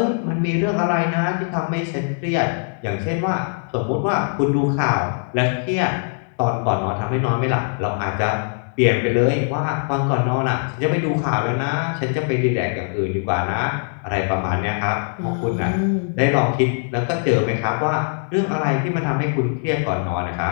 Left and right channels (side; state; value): right; silent; 65 dB below the other